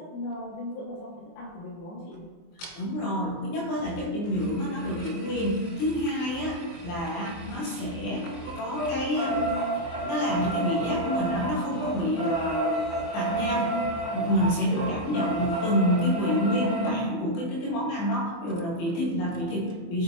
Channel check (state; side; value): late; right; 24 ms